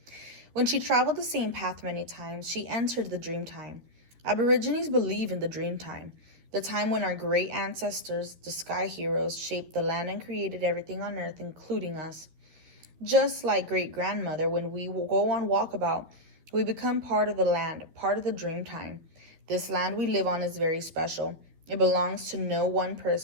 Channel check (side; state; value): left; late; 13 ms